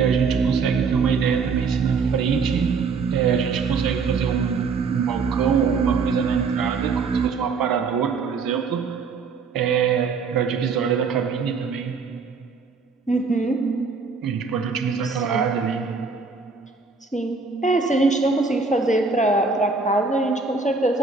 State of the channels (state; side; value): quieter; left; 4.8 dB